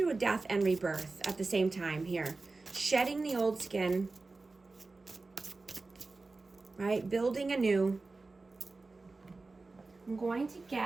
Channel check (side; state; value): left; quieter; 3.6 dB